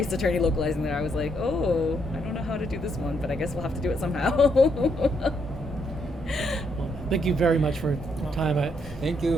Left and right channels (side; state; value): both; normal; correlation 0.75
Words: Attorney localizing that I was like, oh, I don't know how to do this one, but I guess we'll have to do it somehow. Well, thank you very much for your time. Thank